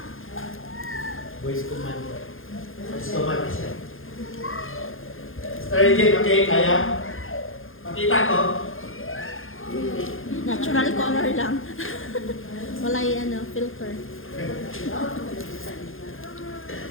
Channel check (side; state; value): right; late; 0.60 ms